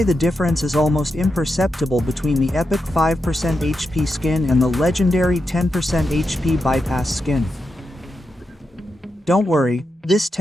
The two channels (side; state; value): both; normal; correlation 0.87